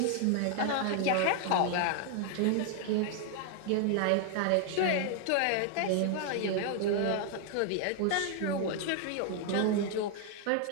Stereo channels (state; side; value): different; both; correlation 0.00